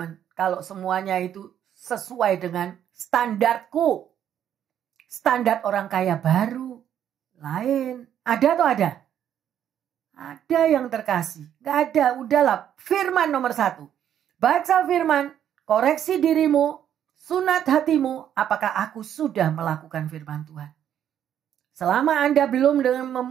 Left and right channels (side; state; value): left; quieter; 10.0 dB